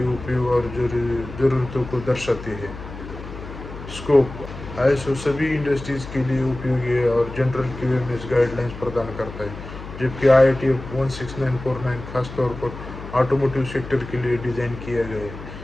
उपयोग और ज़रूरतों को दर्शाते हैं। स्कोप ISO सभी इंडस्ट्रीज के लिए उपयोगी है और जनरल QMS गाइडलाइंस प्रदान करता है, जबकि IATF 16949 खासतौर पर ऑटोमोटिव सेक्टर के लिए डिज़ाइन किया गया है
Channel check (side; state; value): left; noise; hum, 12 dB below the sound